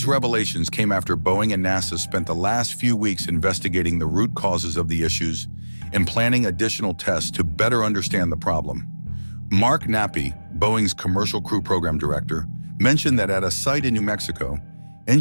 revelations came after Boeing and NASA spent the last few weeks investigating the root causes of the issues and planning additional tests to better understand the problem. Mark Nappy, Boeing's Commercial Crew Program Director, mentioned that at a site in New Mexico,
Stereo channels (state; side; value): inverted; both; correlation -1.00